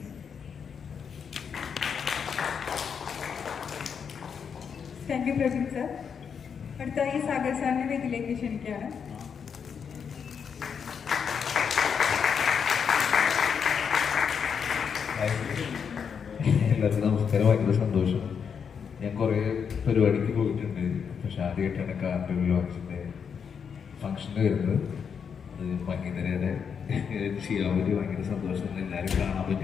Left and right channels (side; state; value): right; quieter; 6.8 dB